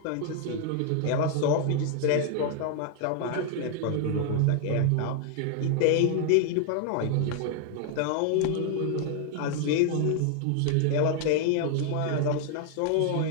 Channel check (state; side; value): different; both; correlation 0.00